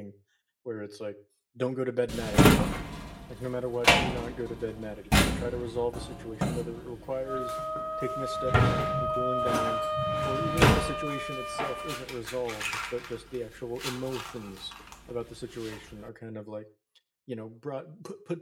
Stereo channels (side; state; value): both; identical; correlation 1.00